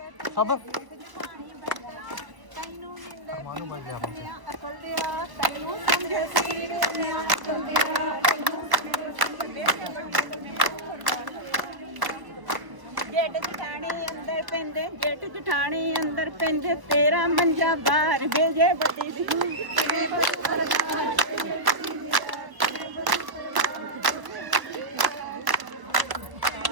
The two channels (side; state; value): left; late; 1.0 ms